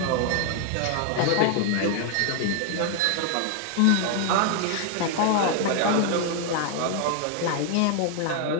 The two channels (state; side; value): different; both; correlation 0.00